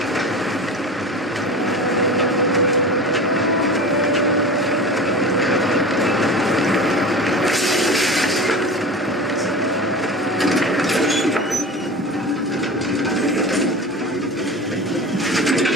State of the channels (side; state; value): both; normal; correlation 0.32